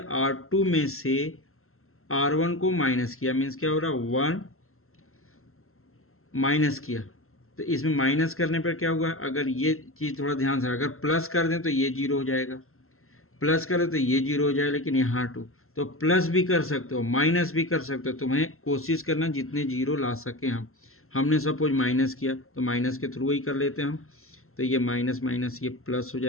R2 में से R1 को माइनस किया, मीन्स क्या हो रहा, 1 माइनस किया। तो इसमें माइनस करने पर क्या हुआ, अगर ये चीज थोड़ा ध्यान से, अगर प्लस कर दें तो ये 0 हो जाएगा, प्लस करें तो ये 0 हो जाएगा, लेकिन यहाँ 2। तो प्लस भी कर सकते हो, माइनस भी कर सकते हो, तुम्हें कोशिश करना जितने 0 ला सके। हमने सपोज माइनस किया तो माइनस के थ्रू ही कर लेते हैं हम। तो ये माइनस माइनस ये प्लस हो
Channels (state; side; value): late; right; 0.62 ms